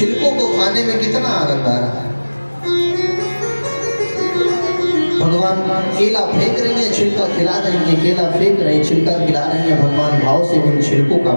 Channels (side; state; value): both; inverted; correlation -1.00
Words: को खाने में, कितना आनंद आ रहा है। भगवान केला फेंक रही है, छिलका खिला रही है, केला फेंक रही है, छिलका खिला रही है, भगवान भाव से उन छिलकों का